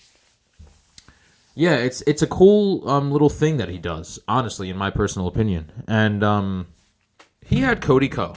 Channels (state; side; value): identical; both; correlation 1.00